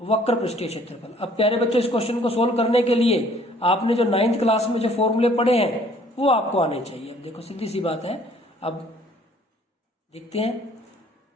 वक्र पृष्ठीय क्षेत्रफल। अब प्यारे बच्चों इस क्वेश्चन को सोल्व करने के लिए आपने जो 9th क्लास में जो फॉर्मूले पढ़े हैं वो आपको आने चाहिए। अब देखो सीधी सी बात है, अब देखते हैं।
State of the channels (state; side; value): normal; both; correlation 0.58